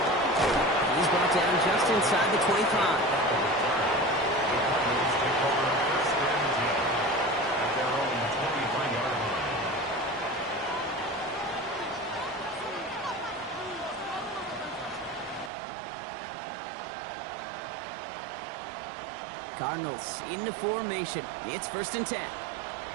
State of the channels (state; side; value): drops out; left; at 15.5 s